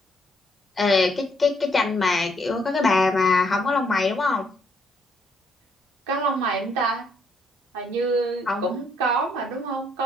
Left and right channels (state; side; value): normal; both; correlation 0.71